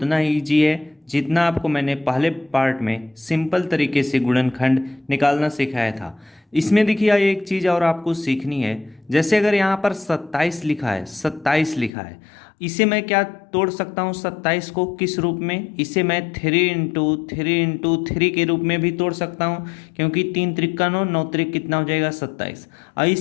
ही ईजी है जितना आपको मैंने पहले पार्ट में सिंपल तरीके से गुणनखंड निकालना सिखाया था। इसमें देखिए एक चीज़ और आपको सीखनी है। जैसे अगर यहाँ पर 27 लिखा है, 27 लिखा है, इसे मैं क्या तोड़ सकता हूँ? 27 को किस रूप में? इसे मैं 3 × 3 × 3 के रूप में भी तोड़ सकता हूँ, क्योंकि 3 त्रिक 9, 9 त्रिक कितना हो जाएगा? 27। और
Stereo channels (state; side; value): drops out; right; at 11.9 s